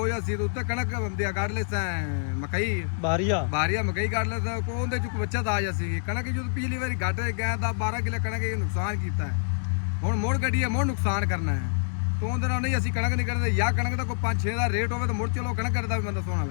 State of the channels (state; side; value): silent; right; digital silence